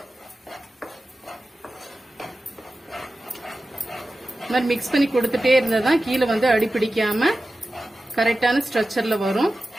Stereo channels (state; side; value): normal; both; correlation 0.94